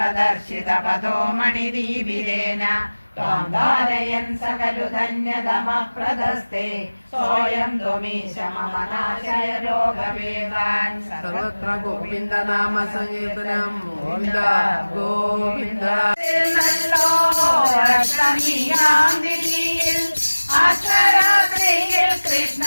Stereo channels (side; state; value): both; inverted; correlation -1.00